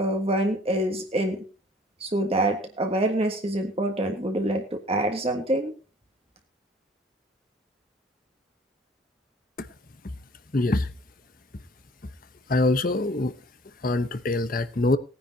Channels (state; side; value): normal; both; correlation 0.53